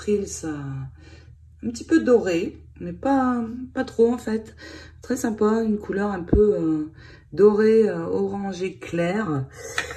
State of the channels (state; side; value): identical; both; correlation 1.00